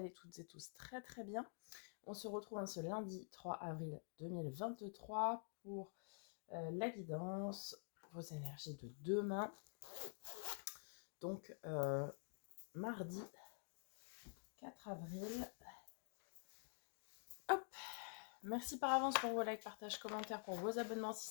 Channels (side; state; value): right; silent; digital silence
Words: toutes et tous très très bien. On se retrouve ce lundi 3 avril 2023 pour la guidance, vos énergies de demain. Donc mardi 4 avril. Hop, merci par avance pour vos likes, partages, commentaires, pour vos abonnements si